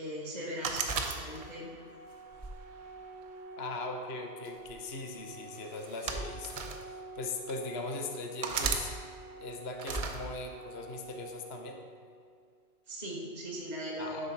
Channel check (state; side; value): late; right; 1.7 ms